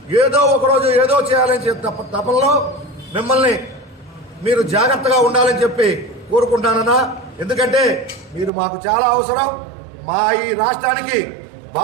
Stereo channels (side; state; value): left; drops out; at 8.5 s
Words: ఏదో ఒకరోజు ఏదో చేయాలని తపనలో మిమ్మల్ని మీరు జాగ్రత్తగా ఉండాలని చెప్పి కోరుకుంటానన్నా. ఎందుకంటే మీరు మాకు చాలా అవసరం, మా ఈ రాష్ట్రానికి